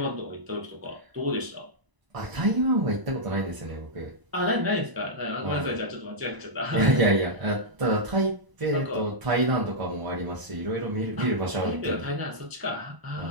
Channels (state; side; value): late; left; 1.0 ms